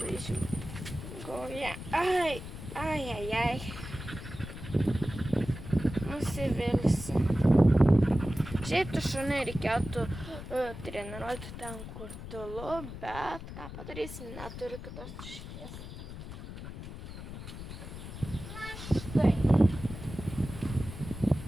žingoja. Ai. Nusivilsi. Šiaip tu šunį reikėtų treniruoti ten, kur tylu, bet ką padarysi, neturiu kitos išeities. Na štai.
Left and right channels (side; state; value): left; noise; rumble, 10 dB below the sound